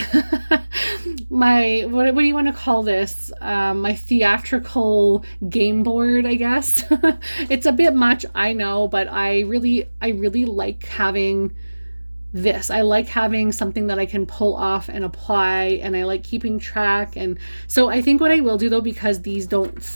my what do you want to call this, my theatrical game board, I guess. It's a bit much, I know, but I really like having this. I like having something that I can pull off and apply, and I like keeping track. And so I think what I will do though, because these don't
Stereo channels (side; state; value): both; inverted; correlation -1.00